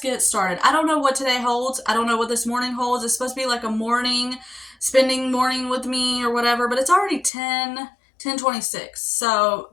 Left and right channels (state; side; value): drops out; right; at 7.3 s